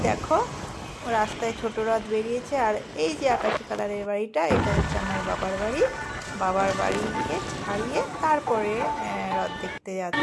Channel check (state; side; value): identical; both; correlation 1.00